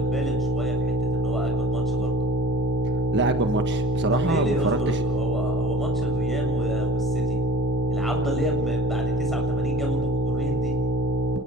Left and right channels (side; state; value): both; normal; correlation 0.45